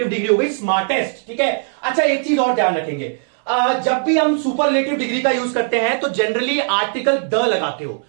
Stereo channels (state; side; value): silent; left; 65 dB below the other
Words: डिग्री हो गई, स्मार्टेस्ट, ठीक है। अच्छा एक चीज और ध्यान रखेंगे, जब भी हम सुपरलेटिव डिग्री का यूज करते हैं तो जनरली आर्टिकल द लगाते हो,